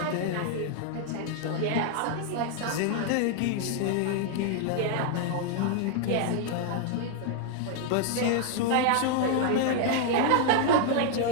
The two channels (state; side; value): different; both; correlation 0.00